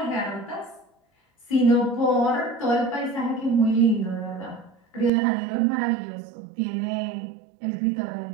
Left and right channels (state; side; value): drops out; left; at 5.1 s